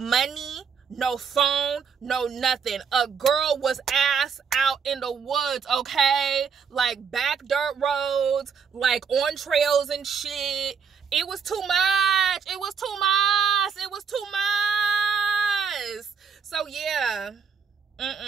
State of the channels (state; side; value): quieter; left; 6.4 dB